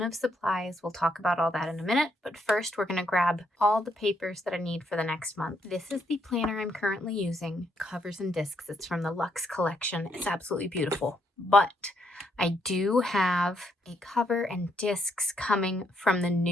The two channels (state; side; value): normal; both; correlation 0.74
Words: of supplies. We'll talk about all that in a minute, but first we're going to grab all the papers that I need for the next month. This is the planner I'm currently using, covers and discs. It's from the Luxe collection. It's absolutely beautiful, but I do have a cover and discs coming from the